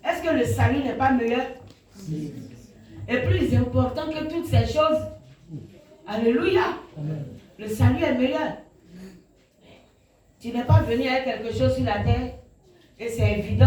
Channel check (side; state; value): both; identical; correlation 1.00